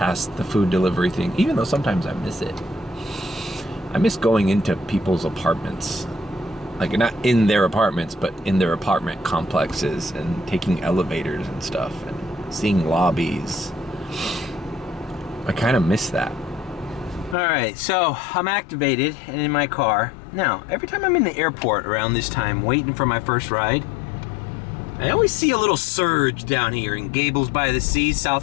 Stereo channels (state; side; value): drops out; right; at 17.4 s